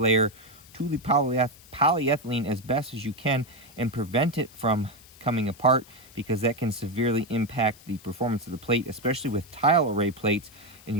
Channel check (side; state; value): left; noise; hiss, 23 dB below the sound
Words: to the polyethylene as best as you can and prevent it from coming apart, because that can severely impact the performance of the plate, especially with tile array plates, and